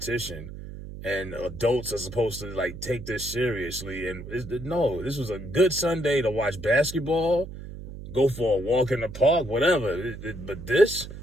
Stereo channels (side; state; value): right; noise; hum, 11 dB below the sound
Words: And adults are supposed to, like, take this seriously. And no, this was a good Sunday to watch basketball, go for a walk in the park, whatever. But this